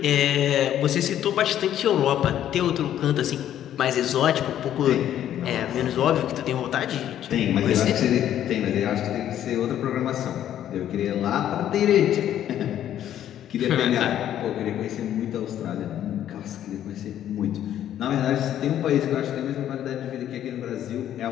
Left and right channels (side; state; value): right; quieter; 11.1 dB